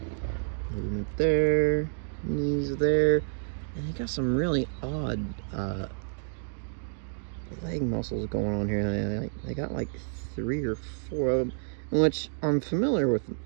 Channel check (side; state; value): left; silent; digital silence